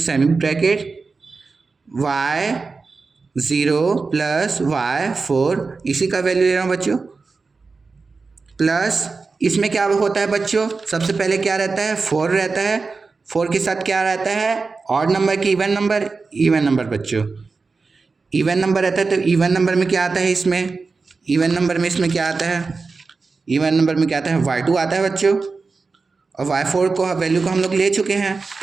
bracket y0 plus y4, इसी का वैल्यू ले रहा हूँ बच्चों, प्लस इसमें क्या होता है बच्चों, सबसे पहले क्या रहता है, 4 रहता है। 4 के साथ क्या रहता है, ऑड नंबर की इवन नंबर, इवन नंबर बच्चों, इवन नंबर रहता है। तो इवन नंबर में क्या आता है, इसमें इवन नंबर में इसमें क्या आता है, इवन नंबर में क्या आता है, y2 आता है बच्चों, और y4 को वैल्यू को हम लोग ले चुके हैं,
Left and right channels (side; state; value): left; quieter; 4.3 dB